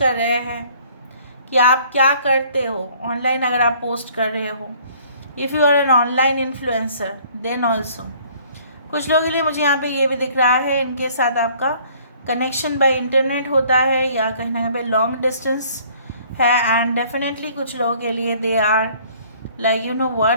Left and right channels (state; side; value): inverted; both; correlation -0.56